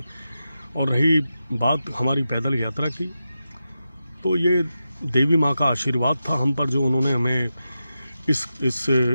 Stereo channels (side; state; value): both; inverted; correlation -0.90